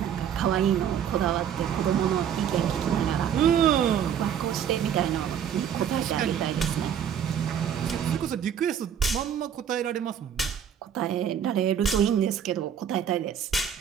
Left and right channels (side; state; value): left; quieter; 8.7 dB